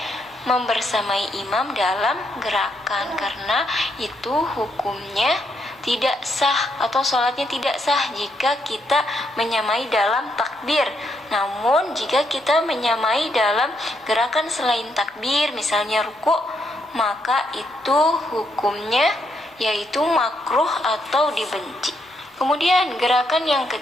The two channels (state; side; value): normal; both; correlation 0.77